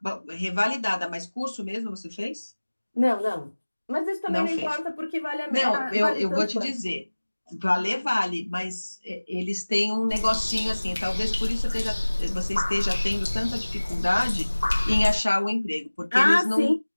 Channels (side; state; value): both; inverted; correlation -1.00